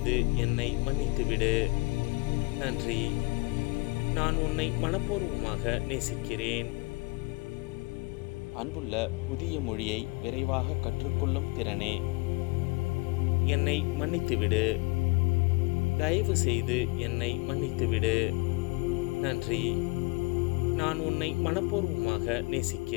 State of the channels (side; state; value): right; quieter; 27.6 dB